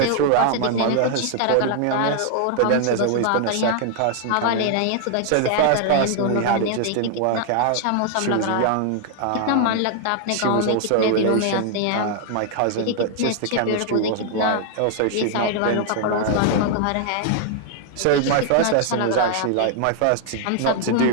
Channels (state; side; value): different; both; correlation 0.00